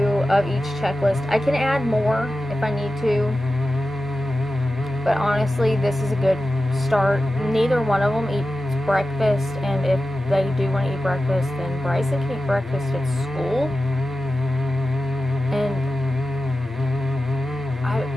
of each checklist. I can add more if I need to, but honestly, this is a good start. Neither one of them eats breakfast, and if they do want to eat breakfast, then Bryson can eat breakfast at school. And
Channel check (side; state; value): both; normal; correlation 0.93